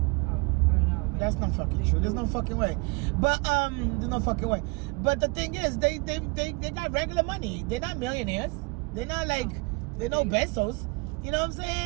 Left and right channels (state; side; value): quieter; left; 28.6 dB